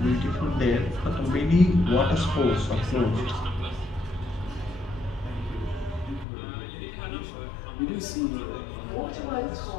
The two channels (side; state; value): right; drops out; at 6.2 s